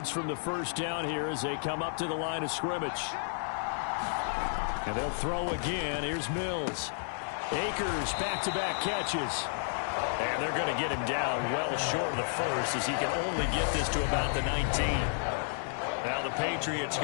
from the first down here as they come up to the line of scrimmage. And they'll throw again. Here's Mills. Akers back-to-back catches. And they're going to get him down well short of the first as he can only get this to about the 19. Now the Patriots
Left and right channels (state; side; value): silent; right; 57 dB below the other